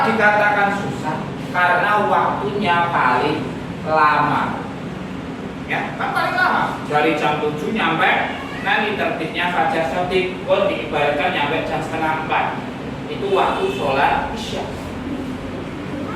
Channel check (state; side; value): identical; both; correlation 1.00